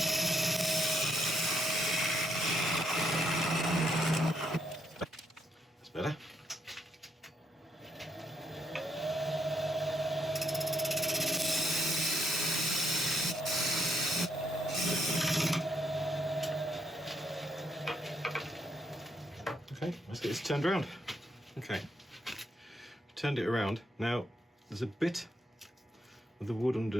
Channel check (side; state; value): both; normal; correlation 0.76